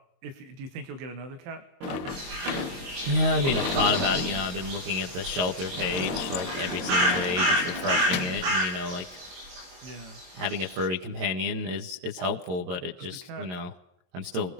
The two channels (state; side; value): late; left; 23 ms